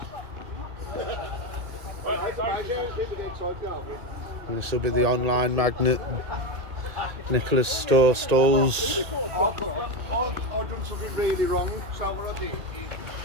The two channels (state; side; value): late; left; 1.8 ms